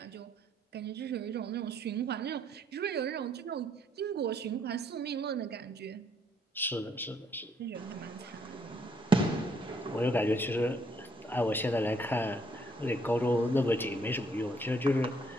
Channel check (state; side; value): normal; both; correlation 0.69